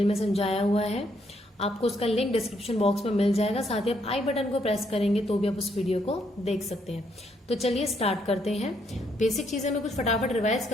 में समझाया हुआ है। आपको उसका लिंक डिस्क्रिप्शन बॉक्स में मिल जाएगा। साथ ही आप आई बटन को प्रेस करेंगे तो भी आप उस वीडियो को देख सकते हैं। तो चलिए स्टार्ट करते हैं। बेसिक चीजें मैं कुछ फटाफट रिवाइज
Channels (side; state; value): both; normal; correlation 0.73